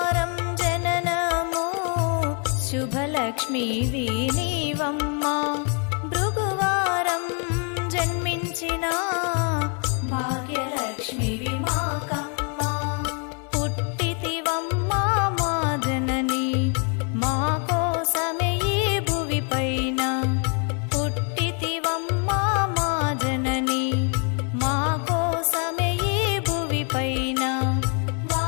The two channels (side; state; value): right; quieter; 38.5 dB